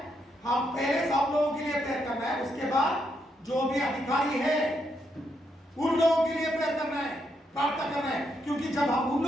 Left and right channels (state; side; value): normal; both; correlation 0.79